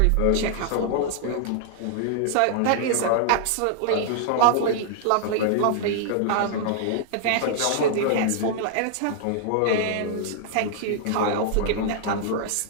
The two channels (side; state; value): both; different; correlation -0.01